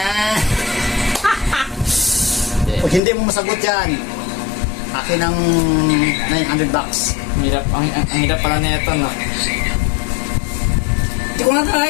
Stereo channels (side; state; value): right; drops out; at 3.0 s